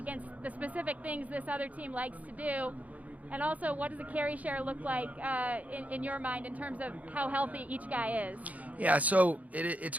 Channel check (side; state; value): left; late; 0.072 ms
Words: the specific things this other team likes to do? And also, what does the carry share look like in your mind in terms of how healthy each guy is? Yeah, so it's